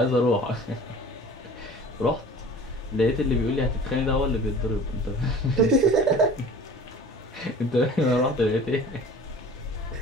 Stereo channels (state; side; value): normal; both; correlation 0.43